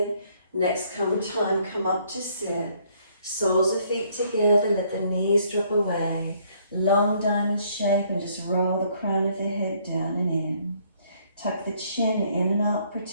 next time come up to sit. Soles of feet together, let the knees drop away. Long diamond shape and just roll the crown of the head down and in. Tuck the chin in and up,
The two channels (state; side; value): inverted; both; correlation -0.65